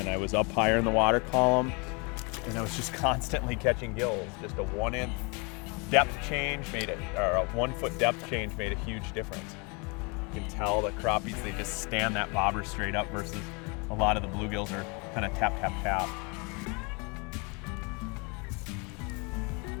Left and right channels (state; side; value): quieter; right; 31.1 dB